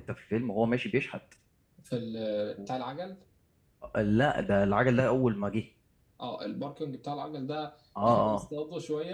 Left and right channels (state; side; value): identical; both; correlation 1.00